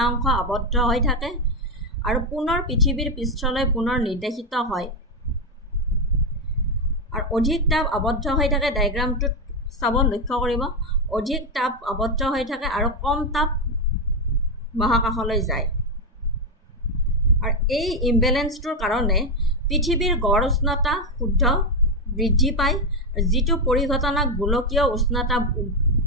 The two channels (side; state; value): both; normal; correlation 0.07